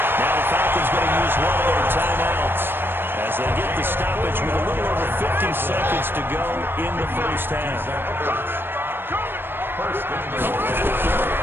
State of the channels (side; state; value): left; late; 0.10 ms